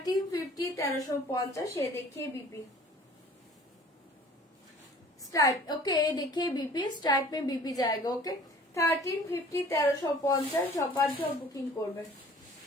1350। ये देखिए बीपी स्टाइप। ओके ये देखिए बीपी स्टाइप में बीपी जाएगा। ओके 1350 1350 সবার সব বুকিং করবে।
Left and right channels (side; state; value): both; normal; correlation 0.49